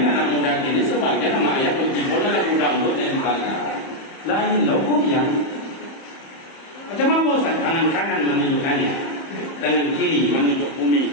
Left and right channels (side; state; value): right; late; 31 ms